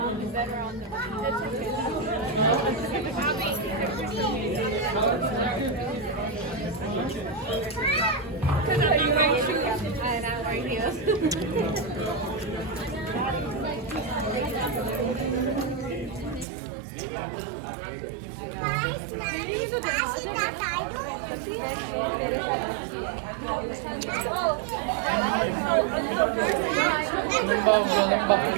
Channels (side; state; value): left; drops out; at 16.4 s